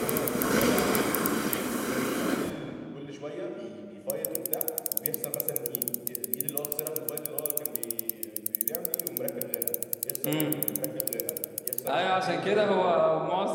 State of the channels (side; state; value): both; identical; correlation 1.00